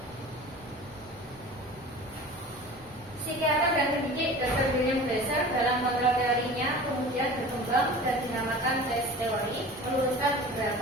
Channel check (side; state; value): both; normal; correlation 0.39